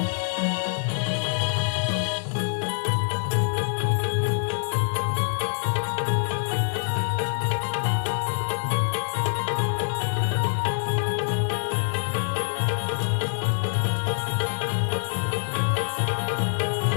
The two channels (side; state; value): right; silent; digital silence